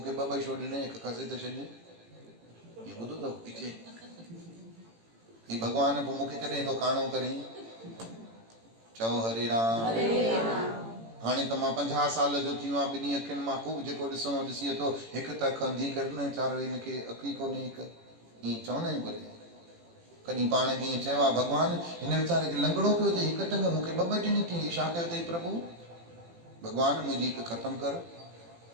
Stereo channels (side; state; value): left; late; 18 ms